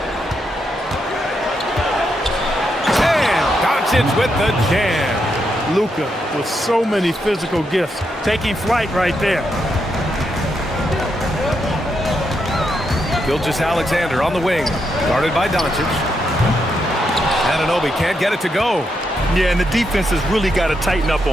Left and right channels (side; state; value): both; normal; correlation 0.81